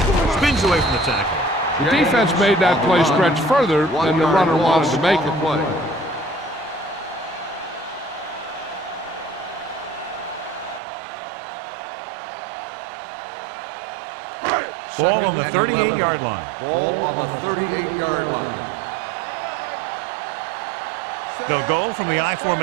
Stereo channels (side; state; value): left; drops out; at 10.8 s